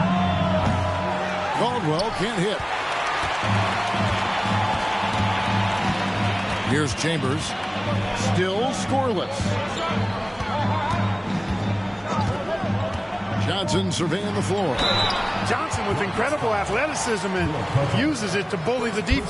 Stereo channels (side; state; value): both; identical; correlation 1.00